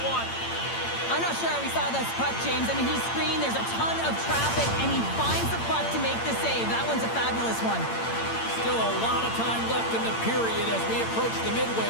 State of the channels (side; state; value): right; late; 8.8 ms